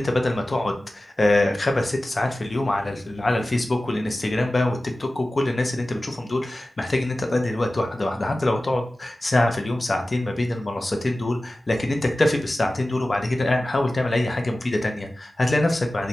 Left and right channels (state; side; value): normal; both; correlation 0.96